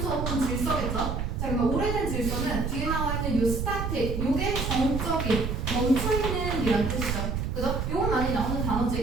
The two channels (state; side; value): noise; right; rumble, 2 dB below the sound